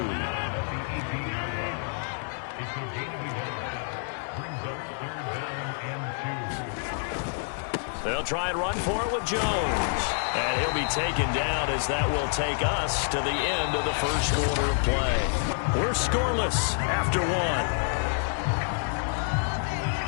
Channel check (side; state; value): right; silent; 59 dB below the other